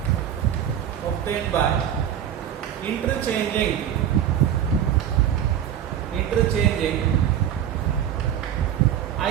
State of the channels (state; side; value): quieter; left; 9.9 dB